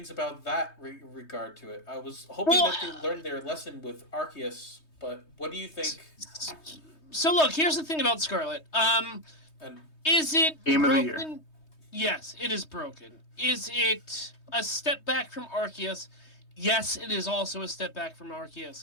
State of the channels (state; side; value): late; right; 3.2 ms